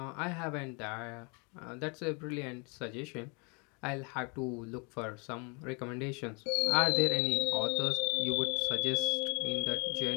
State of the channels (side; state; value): right; quieter; 32.6 dB